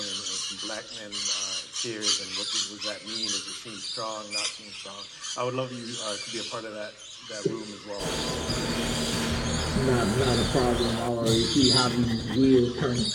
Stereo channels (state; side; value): identical; both; correlation 1.00